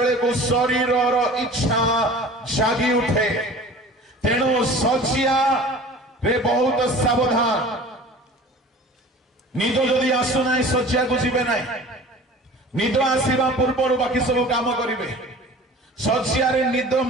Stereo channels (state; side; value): normal; both; correlation 0.42